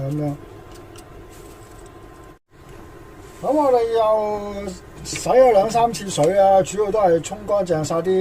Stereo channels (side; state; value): both; identical; correlation 1.00